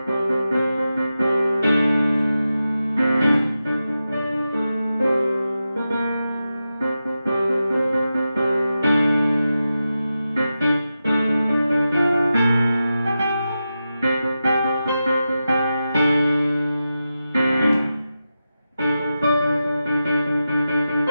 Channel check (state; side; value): inverted; both; correlation -0.91